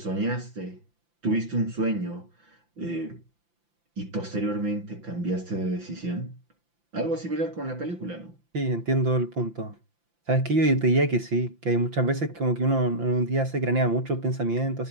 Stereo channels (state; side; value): late; left; 5.8 ms